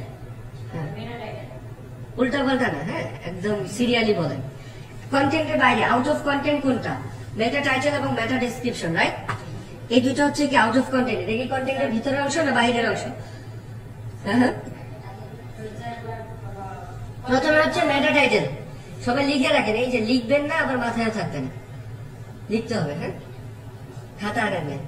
উল্টা পাল্টা না, হ্যাঁ, একদম সিরিয়ালি বলেন। কন্টেন্টের বাইরে আউট অফ কন্টেন্ট কোনটা? মেটা টাইটেল এবং মেটা ডেসক্রিপশন, রাইট? এই দুটো হচ্ছে কি আউট অফ কন্টেন্ট। এটা কি কন্টেন্টের ভিতরের অংশ না বাইরের অংশ? হ্যাঁ, প্রথমে হচ্ছে মেটা টাইটেল। সবাই লিখে রাখেন, এই যে লিখবেন না আবার মাথায় থাকবেন, লিখতে হবে। হ্যাঁ, খাতা আনেন,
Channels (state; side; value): identical; both; correlation 1.00